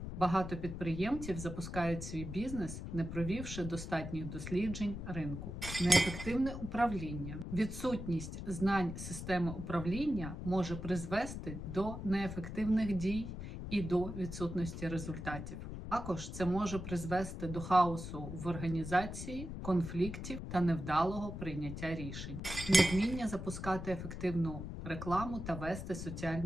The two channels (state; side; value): noise; left; rumble, 7 dB below the sound